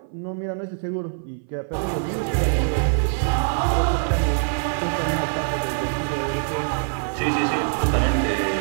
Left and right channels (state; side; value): silent; left; 57 dB below the other